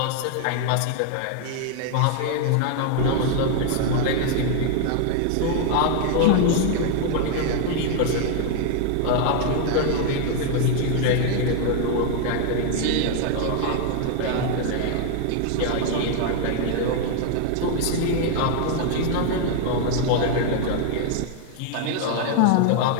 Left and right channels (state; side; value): different; both; correlation 0.00